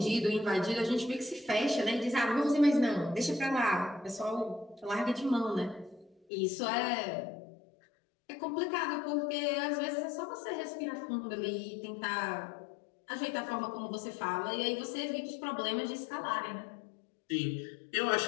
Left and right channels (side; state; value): right; drops out; at 6.2 s